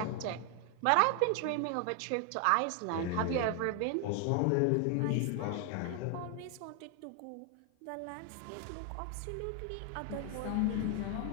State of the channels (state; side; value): different; both; correlation 0.00